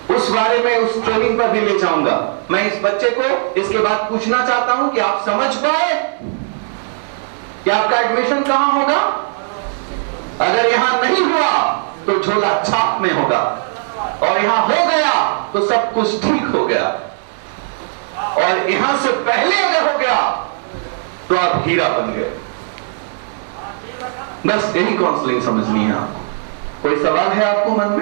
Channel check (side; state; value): left; silent; digital silence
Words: उस बारे में उस ट्रेनिंग पर भी ले जाऊंगा। मैं इस बच्चे को इसके बाद पूछना चाहता हूं कि आप समझ पाए कि आपका एडमिशन कहां होगा? अगर यहां नहीं हुआ तो झोला छाप में होगा, और यहां हो गया तो सब कुछ ठीक हो गया, और यहां से पहले अगर हो गया तो आप हीरा बन गए। बस यही काउंसलिंग समझनी है आपको। कोई सवाल है आपको मन